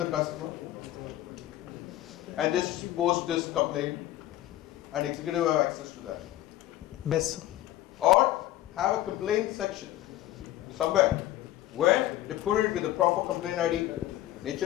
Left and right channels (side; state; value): right; quieter; 14.5 dB